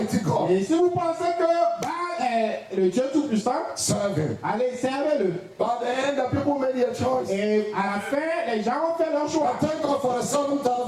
God, Et si vous pensez que Baal est est le Dieu Tout-Puissant, serve him. allez, servez-le. But at the end, the people made their choice. Et à la fin, les gens ont fait leur choix. I thank God for the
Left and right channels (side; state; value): both; identical; correlation 1.00